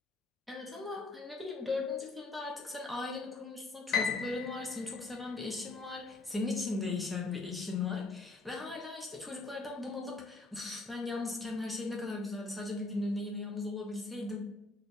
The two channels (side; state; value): right; quieter; 3.3 dB